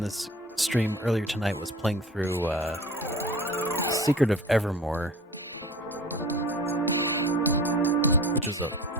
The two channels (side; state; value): both; normal; correlation 0.40